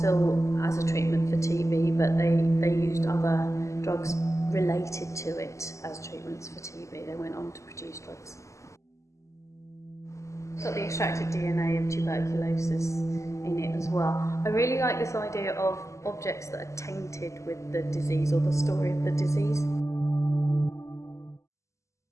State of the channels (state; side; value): late; right; 0.15 ms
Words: as a treatment for TB, but they used other drugs related to it as treatments for TB. They went on to produce drugs. It's got the extracted DNA of tuberculosis in it as well. I really like this idea of objects that are tainted with the disease or the story of the disease.